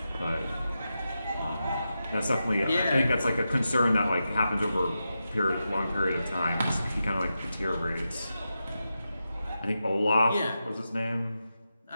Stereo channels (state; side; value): inverted; both; correlation -0.89